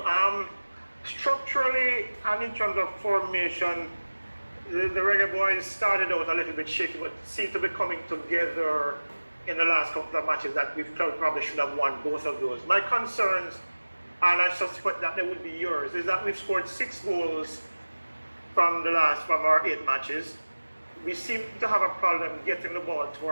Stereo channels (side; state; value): both; inverted; correlation -1.00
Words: Structurally and in terms of formation, the Reggae Boyz started out a little bit shaky, but seem to be coming together in the last couple of matches that we probably should have won both of those. My concerns and I suspect that they would be yours, is that we've scored 6 goals from our 8 matches. We seem to have a problem getting the ball to